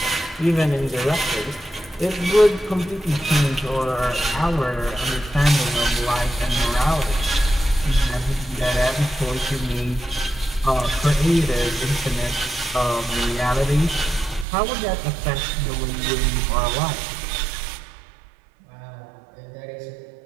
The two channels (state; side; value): drops out; left; at 14.5 s